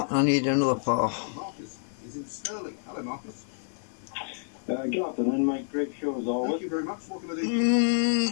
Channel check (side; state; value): right; silent; 57 dB below the other